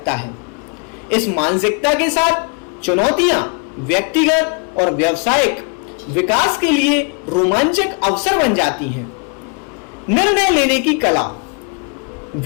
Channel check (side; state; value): right; quieter; 36.5 dB